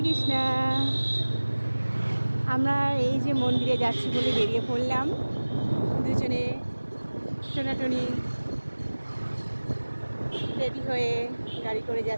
কৃষ্ণা। আমরা এই যে মন্দিরে যাচ্ছি বলে বেরিয়ে পড়লাম দুজনে, টোনাটুনি রেডি হয়ে গাড়ি করে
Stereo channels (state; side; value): inverted; both; correlation -1.00